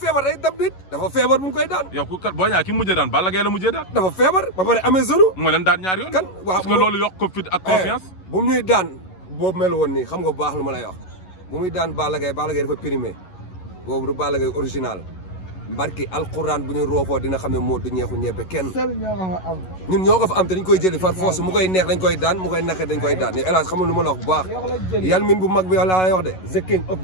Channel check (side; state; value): right; late; 11 ms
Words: day dab nit dafa feebar bu mu koy daan. yow ku kat Boy Niang ki mujjee daan Balla Gaye la mujjee daan. dafa feebar ba pare amee zone. moo leen daan ñaari yoon. kan waaw parce que loolu yokk ko fit ak confiance. bu mu ñuy daan boobu mel woon nii xam nga bu baax lu ma lay wax bu muy daan Balla Gaye dafa primé boobu du Balla Gaye original mbarki alquran bu ñu roofoo dina xam ne moo du ñeexu ñebe kenn ñun ñoo ko fa am te dañ koy jëli far force mu koy neex dañ koy daan mu koy naqe dañ koy daan ni hélas xam nga lu ma la wax bu baax yàlla min bu mag bi laa lay wax de the king of